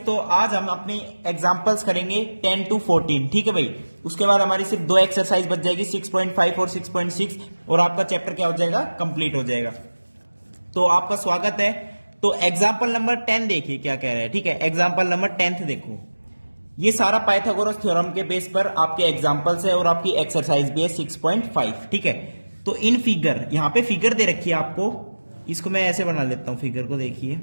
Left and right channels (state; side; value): inverted; both; correlation -1.00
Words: आज हम अपनी एग्जांपल्स करेंगे 10 to 14। ठीक है भाई। उसके बाद हमारी सिर्फ दो एक्सरसाइज बच जाएगी, 6.5 और 6.6, और आपका चैप्टर क्या हो जाएगा, कंप्लीट हो जाएगा। तो आपका स्वागत है। तो एग्जाम्पल नंबर 10 देखिए क्या कह रहा है। ठीक है, एग्जाम्पल नंबर 10 देखो। ये सारा पाइथागोरस थ्योरम के बेस पर आपके एग्जाम्पल्स है और आपकी एक्सरसाइज भी है 6.5। ठीक है, तो इन फिगर, यहां पे फिगर दे रखी है आपको, इसको मैं ऐसे बना लेता हूं। फिगर को देखिए,